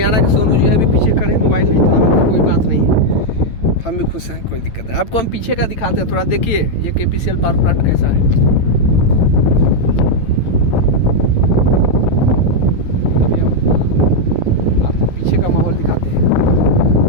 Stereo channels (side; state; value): right; late; 9.0 ms